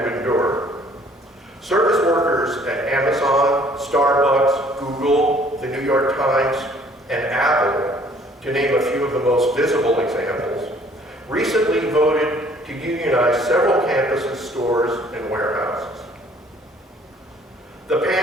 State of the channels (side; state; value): both; normal; correlation 0.58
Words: endure. Service workers at Amazon, Starbucks, Google, the New York Times, and Apple, to name a few of the most visible examples, recently voted to unionize several campuses, stores, and warehouses. The